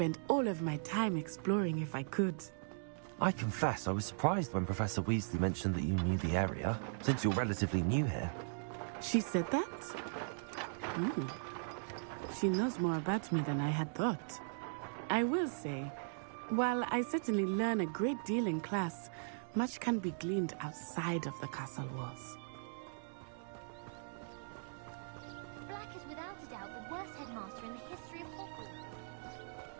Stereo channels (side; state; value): left; silent; digital silence